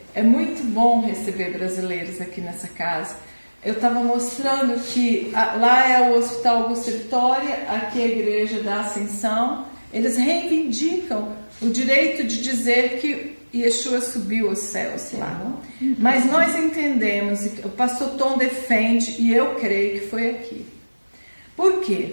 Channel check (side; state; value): both; inverted; correlation -1.00